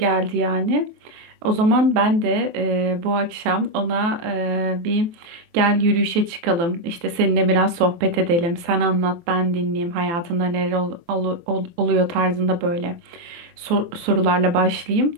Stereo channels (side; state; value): left; late; 23 ms